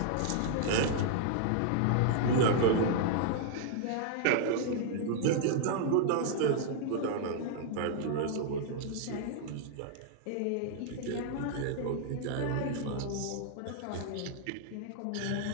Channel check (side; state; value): both; different; correlation -0.01